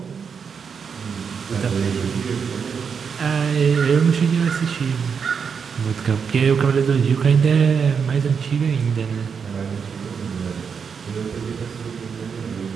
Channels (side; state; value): left; quieter; 6.3 dB